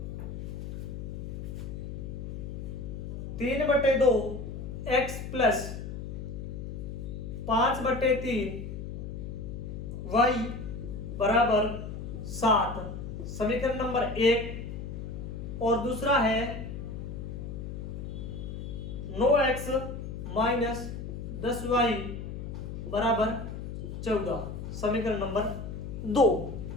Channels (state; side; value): noise; left; hum, 7 dB below the sound